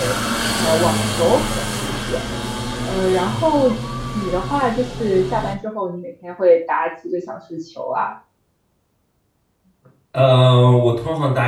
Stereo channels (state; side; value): identical; both; correlation 1.00